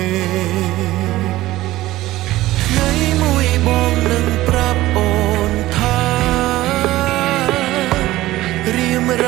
ថ្ងៃមួយបងនឹងប្រាប់អូនថារៀមរ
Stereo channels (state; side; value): quieter; left; 16.6 dB